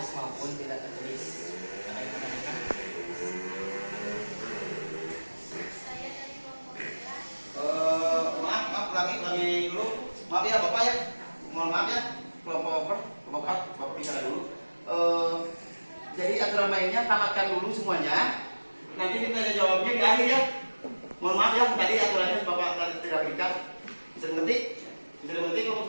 maupun tidak tertulis. Ada yang menanyakan? Maaf, ulangi dulu. Maaf ya Bapak ya. Mohon maaf ya. Kelompok 4, Bapak bicara dulu. Jadi aturan mainnya tamatkan dulu semuanya. Nanti ditanya jawabnya di akhir ya. Mohon maaf ya, tadi aturannya Bapak tadi tidak berikan. Bisa dimengerti? Bisa dimengerti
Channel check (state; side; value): inverted; both; correlation -1.00